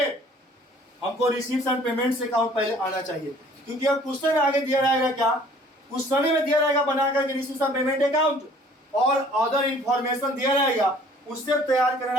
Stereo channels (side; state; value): both; normal; correlation 0.54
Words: हमको रिसीव्स एंड पेमेंट्स अकाउंट पहले आना चाहिए, क्योंकि अब क्वेश्चन आगे दिया रहेगा, क्या क्वेश्चन में दिया रहेगा बना करके रिसीव्स एंड पेमेंट अकाउंट और अदर इंफॉर्मेशन दिया रहेगा, उससे तैयार करना